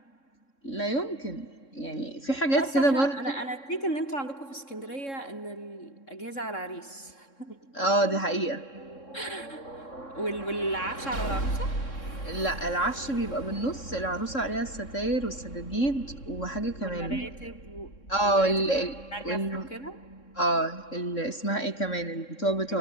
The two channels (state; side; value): late; right; 3.7 ms